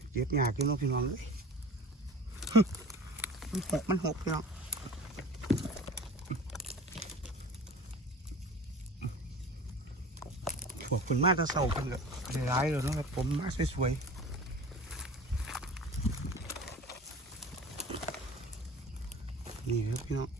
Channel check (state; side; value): normal; both; correlation 0.40